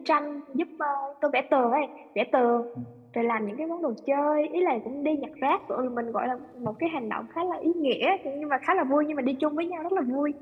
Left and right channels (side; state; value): both; identical; correlation 1.00